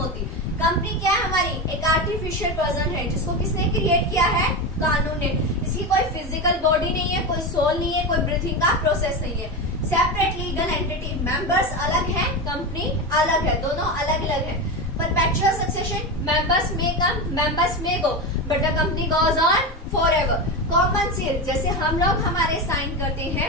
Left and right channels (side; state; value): both; normal; correlation 0.19